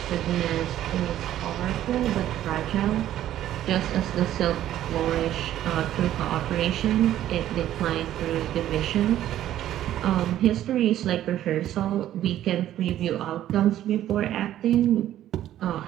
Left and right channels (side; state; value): left; quieter; 12.5 dB